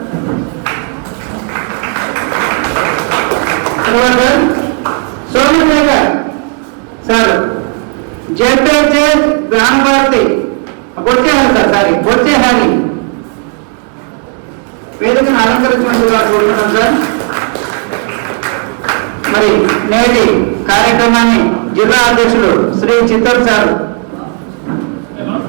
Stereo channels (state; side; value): quieter; left; 39.7 dB